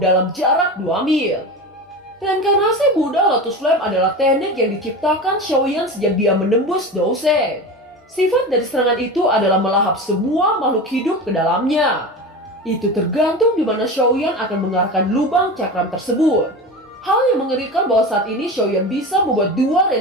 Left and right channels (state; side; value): normal; both; correlation 0.28